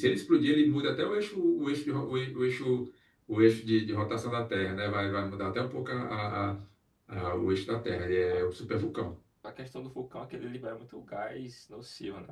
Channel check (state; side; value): identical; both; correlation 1.00